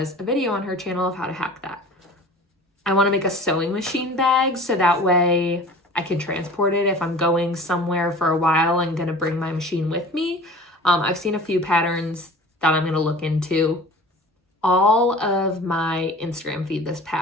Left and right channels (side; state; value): both; normal; correlation 0.42